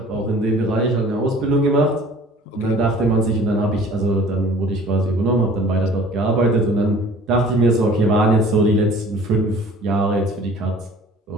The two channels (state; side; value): normal; both; correlation 0.49